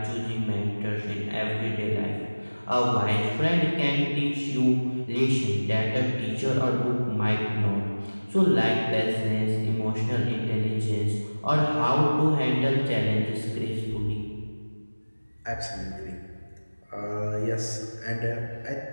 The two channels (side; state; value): both; inverted; correlation -1.00